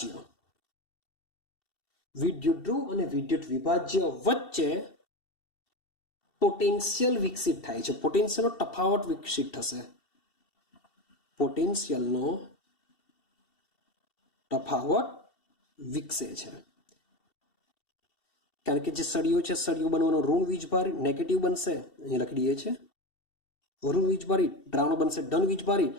વિદ્યુત ધ્રુવ અને વિદ્યુત વિભાજ્ય વચ્ચે પોટેન્શિયલ વિકસિત થાય છે. પોટેન્શિયલનો તફાવત વિકસિત થશે. પોટેન્શિયલનો તફાવત વિકસે છે, કારણ કે જે સળિયો છે, સળિયો બનવાનો ઋણ વીજભારિત, નેગેટિવ બનશે, અહીં લખી દઈએ છે ઋણ વીજભારિત, દ્રાવણ બનશે ધન વીજભારિત.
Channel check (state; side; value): late; right; 2.7 ms